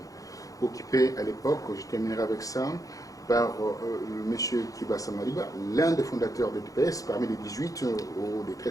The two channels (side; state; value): right; late; 0.17 ms